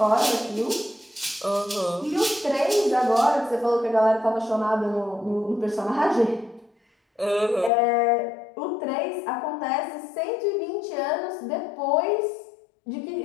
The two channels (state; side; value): drops out; right; at 7.7 s